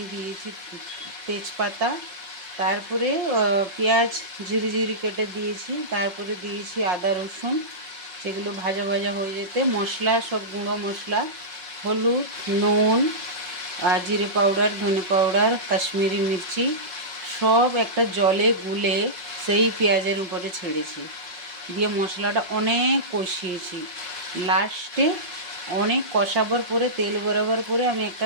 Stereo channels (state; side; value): late; left; 5.5 ms